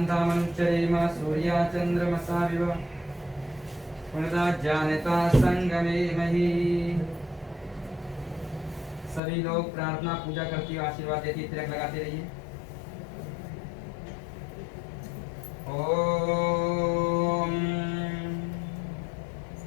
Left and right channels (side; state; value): right; drops out; at 9.2 s